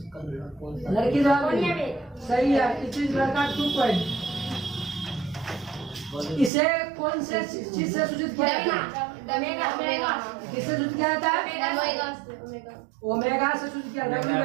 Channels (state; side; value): drops out; left; at 6.5 s